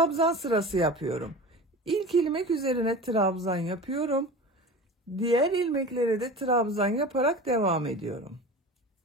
sırası yapıyorum. İlk ilmek üzerine trabzan yapıyorum. Diğer ilmeklere de trabzan yaparak devam ediyorum.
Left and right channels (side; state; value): both; normal; correlation 0.35